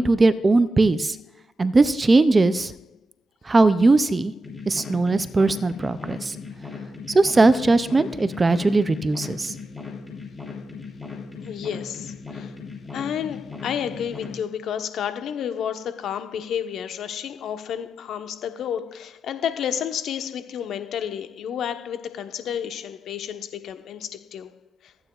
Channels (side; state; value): both; normal; correlation 0.90